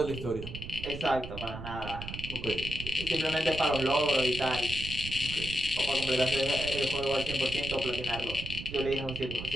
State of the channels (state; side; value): noise; right; rumble, 9 dB below the sound